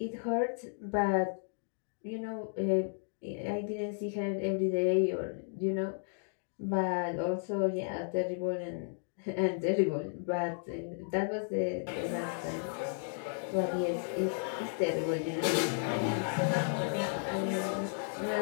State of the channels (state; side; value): silent; right; digital silence